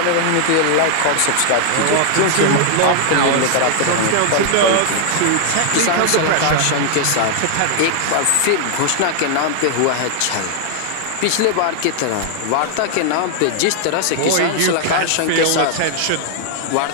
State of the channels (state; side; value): different; both; correlation 0.00